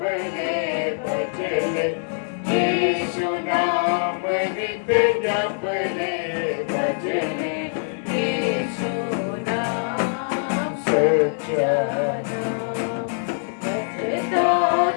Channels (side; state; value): right; silent; 58 dB below the other